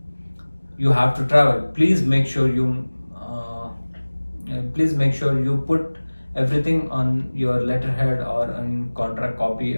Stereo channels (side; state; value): both; inverted; correlation -1.00